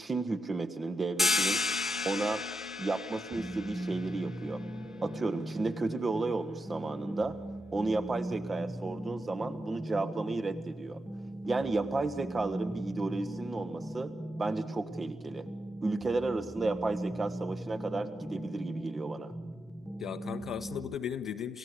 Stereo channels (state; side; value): normal; both; correlation 0.87